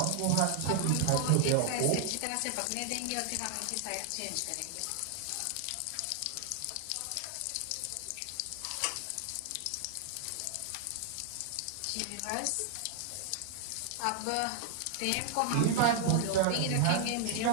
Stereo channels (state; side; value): different; both; correlation 0.00